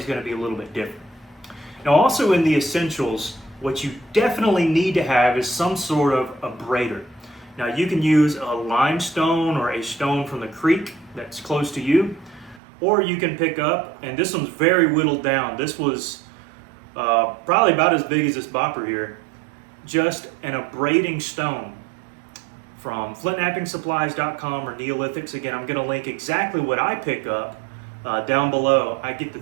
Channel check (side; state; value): left; drops out; at 12.6 s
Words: going to be a little bit different. Now, also in the essentials, what you definitely need to have is some sort of abrader. Now, you can use a limestone or a stone from the creek that's close to you, or you can pick up, and this one's very whittled down. This was probably about as big as this bopper here, just an abrading stone from FlintnappingSupplies.com or Neolithics. Again, I'm going to link exactly what I pick up down below. I get the